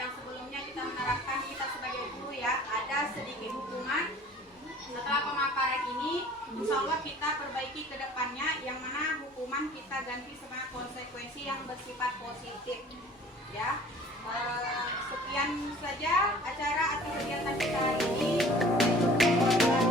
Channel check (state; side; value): normal; both; correlation 0.48